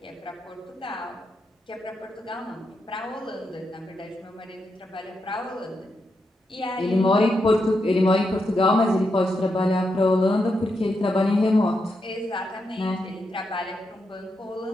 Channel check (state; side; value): normal; both; correlation 0.84